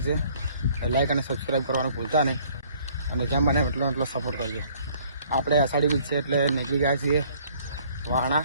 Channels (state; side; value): inverted; both; correlation -0.59